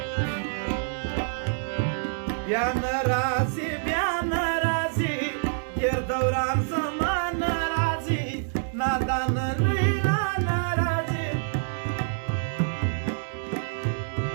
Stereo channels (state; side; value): silent; left; digital silence